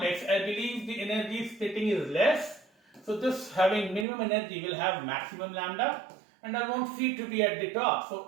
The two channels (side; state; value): left; drops out; at 4.0 s